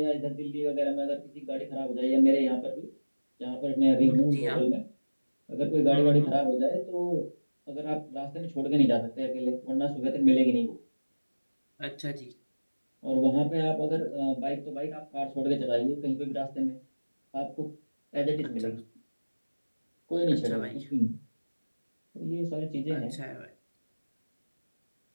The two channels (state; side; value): inverted; both; correlation -1.00